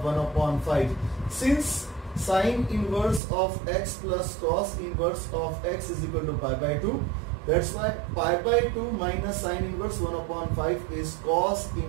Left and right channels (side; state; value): left; drops out; at 3.2 s